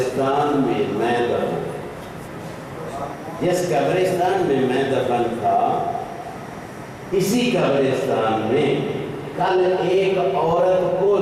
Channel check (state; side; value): identical; both; correlation 1.00